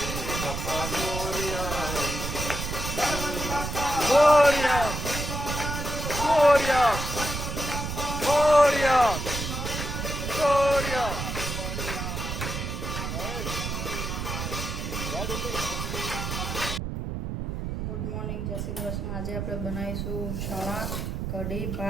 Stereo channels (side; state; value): right; noise; rumble, 4 dB below the sound